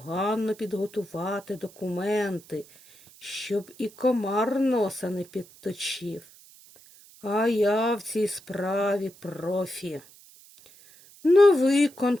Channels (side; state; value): right; noise; hiss, 24 dB below the sound